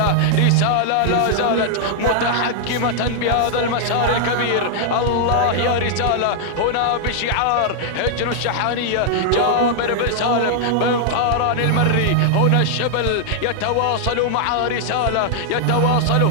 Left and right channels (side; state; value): both; different; correlation -0.01